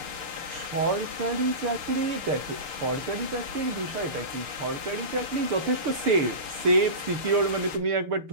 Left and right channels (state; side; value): late; left; 6.7 ms